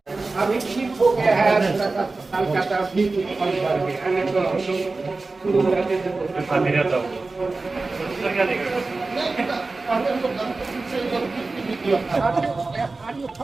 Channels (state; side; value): quieter; left; 3.6 dB